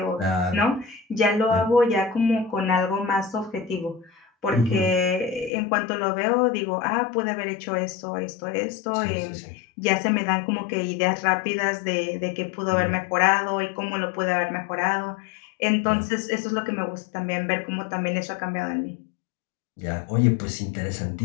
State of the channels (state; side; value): drops out; right; at 5.5 s